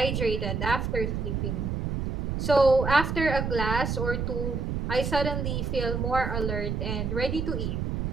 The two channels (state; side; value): noise; right; rumble, 2 dB below the sound